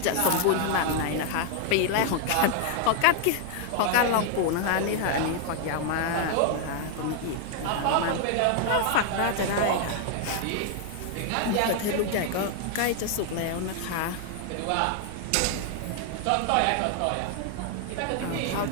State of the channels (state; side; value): different; both; correlation 0.00